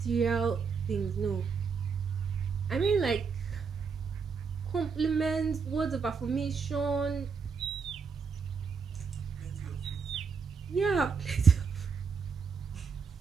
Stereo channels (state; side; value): quieter; left; 5.5 dB